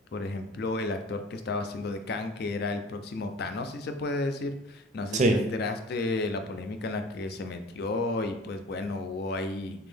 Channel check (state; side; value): normal; both; correlation 0.44